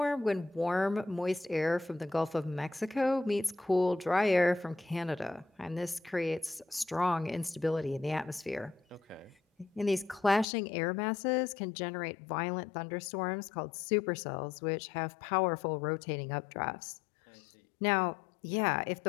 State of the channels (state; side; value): drops out; right; at 10.5 s